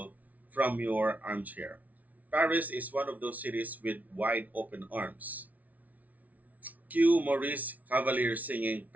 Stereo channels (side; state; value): left; late; 0.073 ms